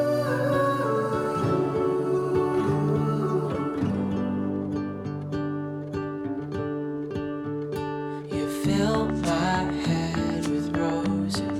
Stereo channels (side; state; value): both; identical; correlation 1.00